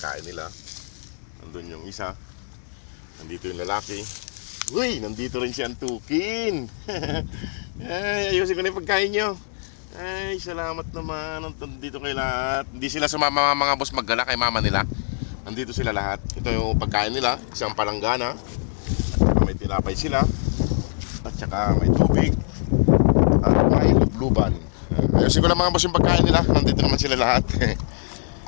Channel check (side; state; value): right; silent; digital silence